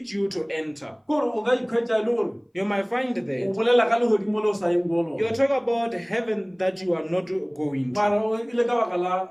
you to enter. kore o ka ikhwetša e le gore You might find o that bolela ka legodimo le o sa yeng ko lona you're talking about heaven that you are not going to, mara o ile ka baka la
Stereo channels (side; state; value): both; identical; correlation 1.00